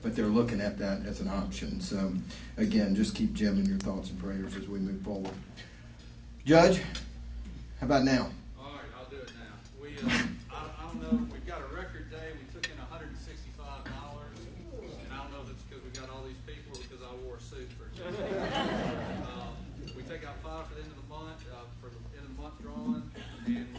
but they're looking at that as an option. So again, just keep Jim in your thoughts and prayers as we move forward. Judge, how about now? All right, I'll do it now. We, I don't know, we've got a record day. We took in $165, and I don't know if it's because we got all these people or because I wore a suit for a change. We take out 5 for the end of the month, for the end of the month drawing, and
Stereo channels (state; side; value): identical; both; correlation 1.00